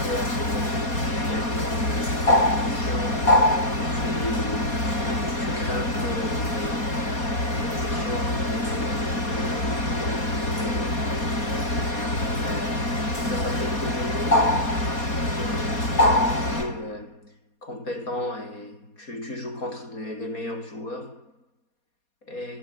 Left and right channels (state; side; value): late; right; 4.2 ms